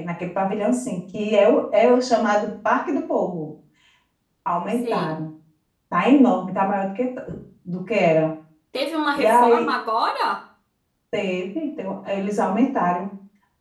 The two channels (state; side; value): identical; both; correlation 1.00